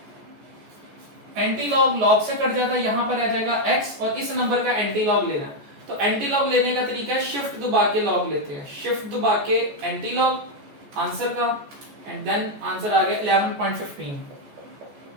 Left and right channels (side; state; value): left; late; 14 ms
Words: एंटी लॉग लॉग से कट जाता है, यहां पर आ जाएगा x, और इस नंबर का एंटी लॉग लेना है। तो एंटी लॉग लेने का तरीका है शिफ्ट दबा के लॉग लेते हैं, शिफ्ट दबा के एंटी लॉग आंसर का, एंड देन आंसर आ गया 11.15।